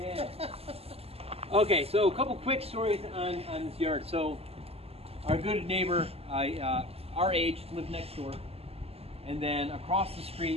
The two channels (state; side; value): late; left; 0.29 ms